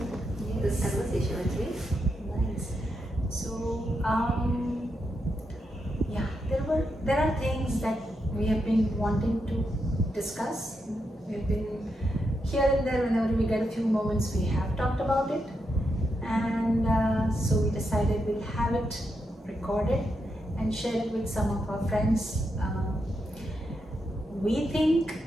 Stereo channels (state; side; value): normal; both; correlation 0.84